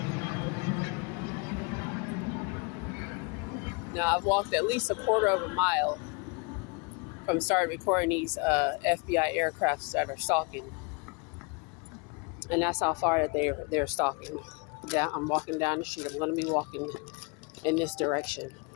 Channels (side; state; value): right; quieter; 32.0 dB